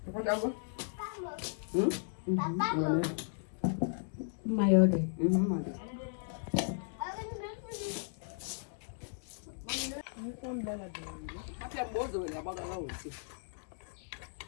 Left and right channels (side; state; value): right; silent; digital silence